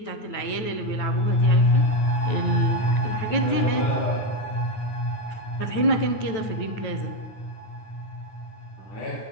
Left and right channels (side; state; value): right; late; 9.2 ms